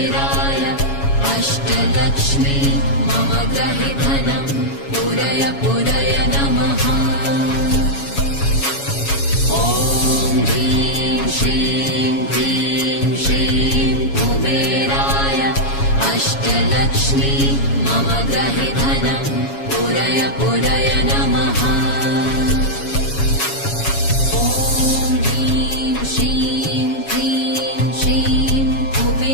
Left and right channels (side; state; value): right; late; 7.2 ms